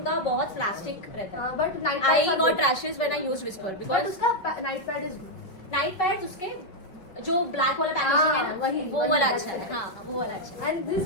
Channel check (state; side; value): late; right; 5.1 ms